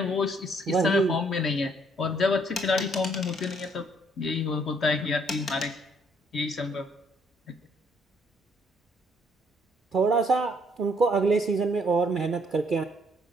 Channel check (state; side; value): normal; both; correlation 0.66